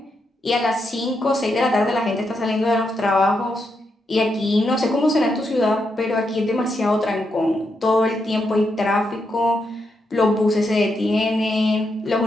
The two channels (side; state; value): both; normal; correlation 0.82